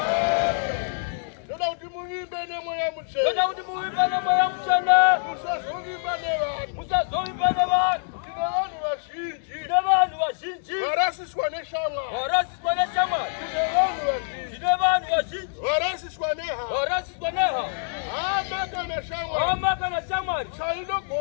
Ndoda utimuimbe ne moya mchana. Ndoda utimuimbe ne moya mchana. Musazovimba ne vanhu. Musazovimba ne vanhu. Tine vanhu vazhinji. Tine vanhu vazhinji. Varasiswa neshamwari. Varasiswa neshamwari. Tine vanhu vazhinji. Tine vanhu vazhinji. Varasiswa nehama. Varasiswa nehama. Hama kana shamwari. Hama kana shamwari.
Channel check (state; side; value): silent; right; digital silence